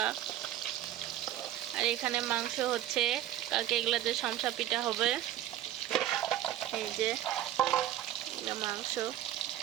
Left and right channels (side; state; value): left; quieter; 12.5 dB